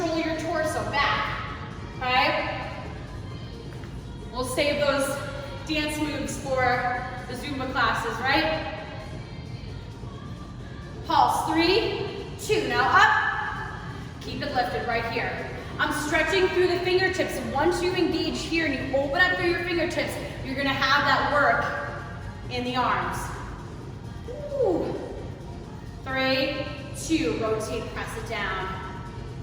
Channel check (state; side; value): identical; both; correlation 1.00